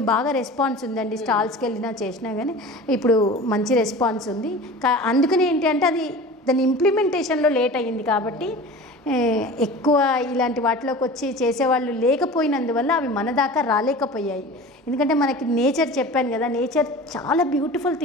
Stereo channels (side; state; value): both; normal; correlation 0.37